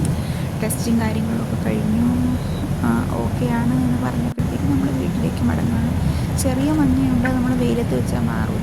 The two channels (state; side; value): identical; both; correlation 1.00